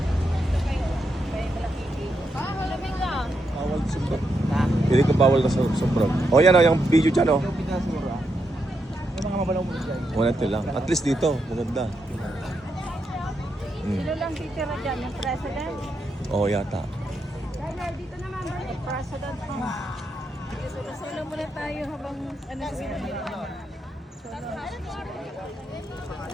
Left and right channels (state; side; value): normal; both; correlation 0.83